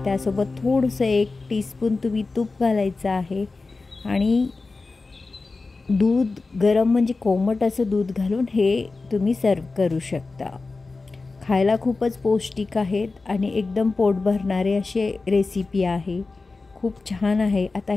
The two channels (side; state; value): right; quieter; 3.7 dB